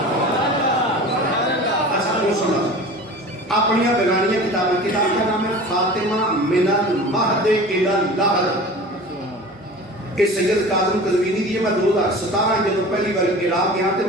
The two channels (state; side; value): normal; both; correlation 0.38